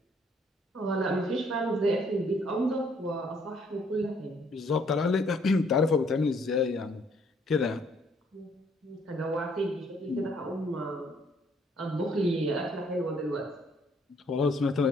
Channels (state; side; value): normal; both; correlation 0.65